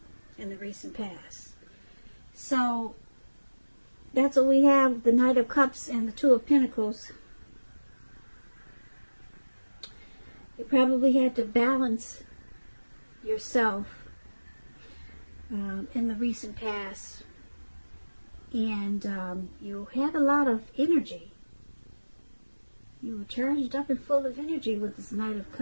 in the recent past. So that's what we have, the Knight of Cups and the Two of Pentacles. You probably had to balance yourself in the recent past, and you had a lot of energy. You were charged up and full of energy with this Knight of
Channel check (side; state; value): both; inverted; correlation -1.00